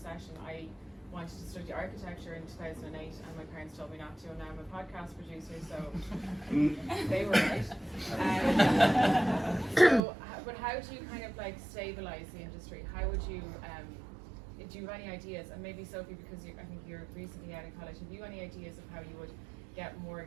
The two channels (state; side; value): drops out; left; at 10.0 s